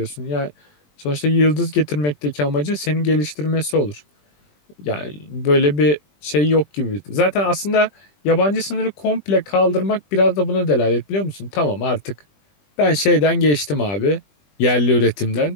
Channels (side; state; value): right; late; 20 ms